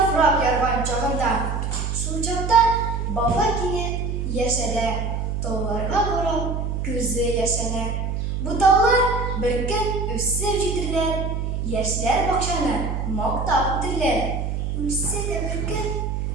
yargan chog'inda. Shu chog'da baba kiyib yashalar. Tog'larga qarab ko'zi yashanar. Bu tog'lar bir kun o'sib yetirlar. Yoshlar bakshani maqtab o'tirlar. O'ssa-da bir kun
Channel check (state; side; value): noise; right; hum, 2 dB below the sound